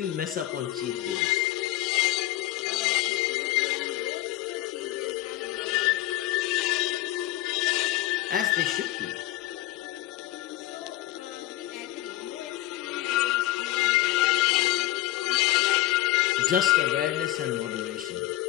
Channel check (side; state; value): right; quieter; 15.4 dB